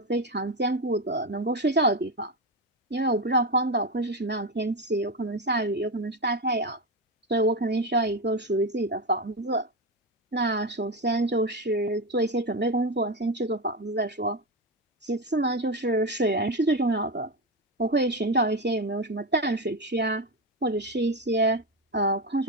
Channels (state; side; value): normal; both; correlation 0.15